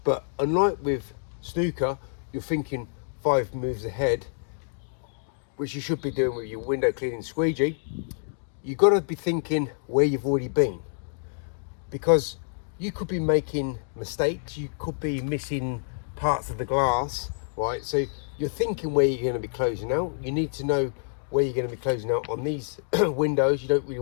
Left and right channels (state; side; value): silent; right; digital silence